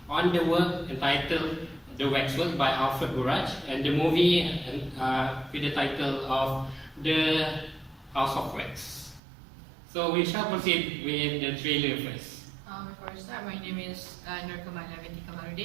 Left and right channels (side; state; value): left; drops out; at 9.2 s